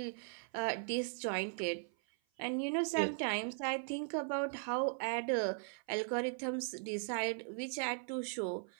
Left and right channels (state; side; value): silent; left; 52 dB below the other